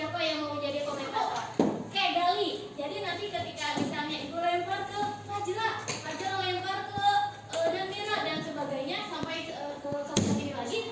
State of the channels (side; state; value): both; identical; correlation 1.00